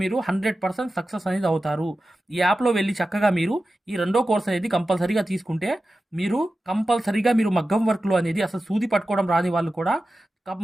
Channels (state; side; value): normal; both; correlation 0.94